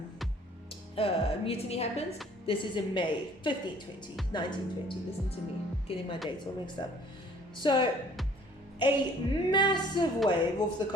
mutiny happens. This is in May 1920. Listen to me, getting my dates all mixed up. So a massive wave off the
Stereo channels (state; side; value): normal; both; correlation 0.55